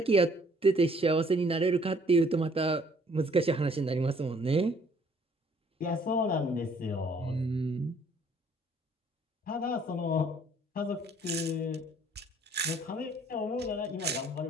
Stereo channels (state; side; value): normal; both; correlation 0.60